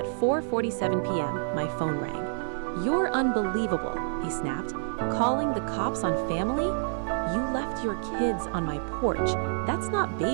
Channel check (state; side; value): silent; left; 59 dB below the other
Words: 4:47 p.m., my phone rang. You're unbelievable, he snapped. Calling the cops on family? You left your kids on my porch. That's not